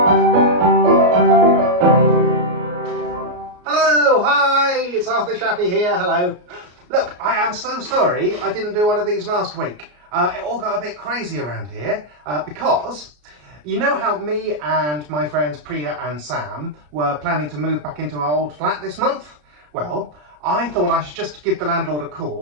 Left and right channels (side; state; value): left; late; 33 ms